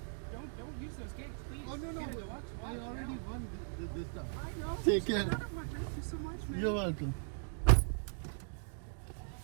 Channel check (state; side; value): silent; left; digital silence